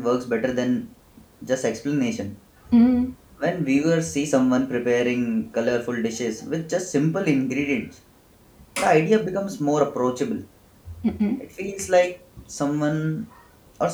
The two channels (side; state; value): both; identical; correlation 1.00